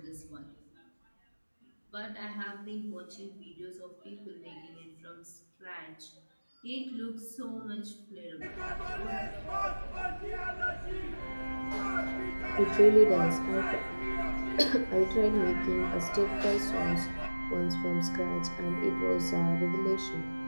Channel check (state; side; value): inverted; both; correlation -1.00